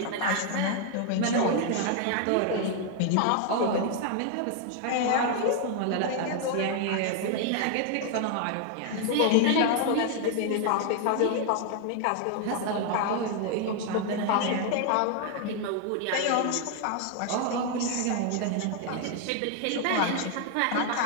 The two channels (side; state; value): both; different; correlation 0.00